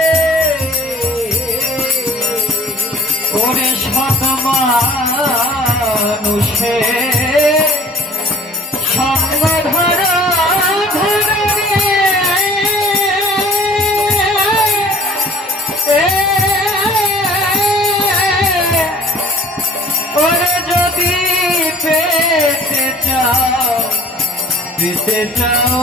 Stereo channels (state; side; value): normal; both; correlation 0.51